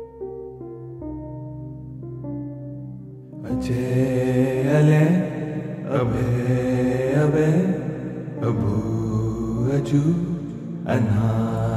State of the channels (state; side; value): identical; both; correlation 1.00